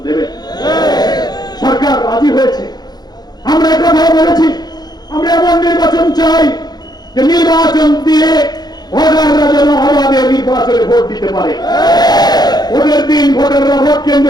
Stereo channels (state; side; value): late; right; 0.20 ms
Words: দেবেন। সরকার রাজি হয়েছে। আমরা একথা বলেছি, আমরা এমন নির্বাচন চাই যে নির্বাচন দিয়ে ভোটাররা যেন অবাধে নির্বাচনে ভোট দিতে পারে। ভোটের দিন ভোটাররা ভোট